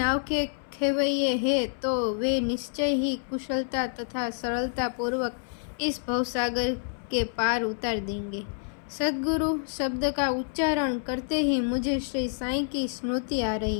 के खेवैये हैं तो वे निश्चय ही कुशलता तथा सरलता पूर्वक इस भवसागर के पार उतार देंगे। सद्गुरु शब्द का उच्चारण करते ही मुझे श्री साईं की स्मृति आ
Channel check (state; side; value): silent; right; 59 dB below the other